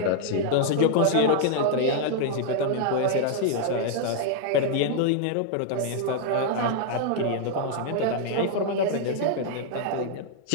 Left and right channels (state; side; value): different; both; correlation 0.00